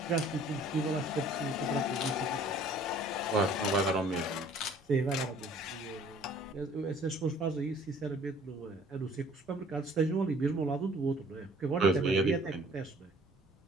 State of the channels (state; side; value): normal; both; correlation 0.54